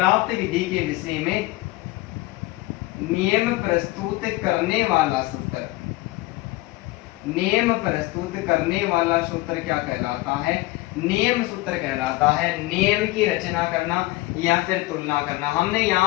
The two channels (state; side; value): quieter; right; 19.6 dB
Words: विधि के विषय में नियम प्रस्तुत करने वाला सूत्र, नियम प्रस्तुत करने वाला सूत्र क्या कहलाता है, नियम सूत्र कहलाता है। नियम की रचना करना या फिर तुलना करना। हमने